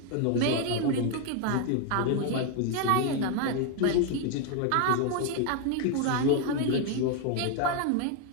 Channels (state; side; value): different; both; correlation 0.01